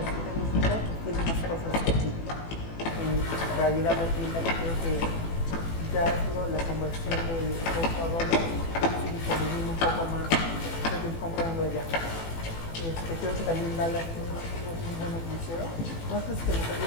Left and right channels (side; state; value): right; late; 18 ms